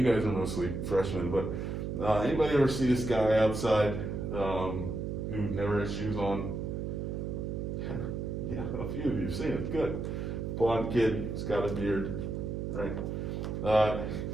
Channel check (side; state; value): right; noise; hum, 3 dB below the sound